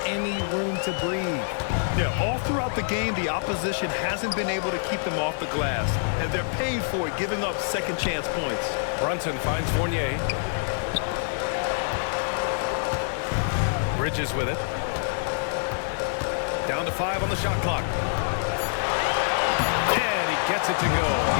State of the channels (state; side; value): silent; right; digital silence